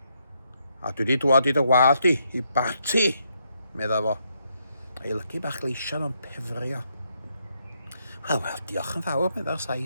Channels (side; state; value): both; inverted; correlation -0.77